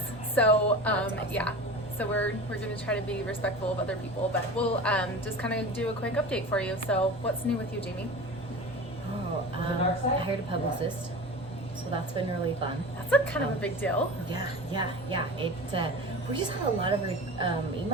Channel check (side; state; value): both; normal; correlation 0.33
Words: So, yeah. So we're going to try to be respectful of other people, but we'll just kind of do a quick update for you. So what's new with you, Jami? Oh, I hired a publicist, so that's been really fun. That's a kind of a big deal. Yeah. It we just had a lot of